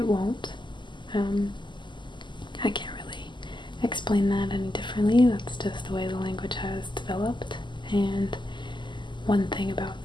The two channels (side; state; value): right; late; 0.22 ms